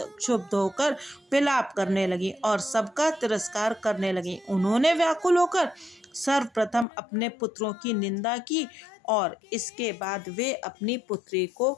क्षुब्ध होकर विलाप करने लगी और सबका तिरस्कार करने लगी। उन्होंने व्याकुल होकर सर्वप्रथम अपने पुत्रों की निंदा की और इसके बाद वे अपनी पुत्री को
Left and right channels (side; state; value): right; drops out; at 6.9 s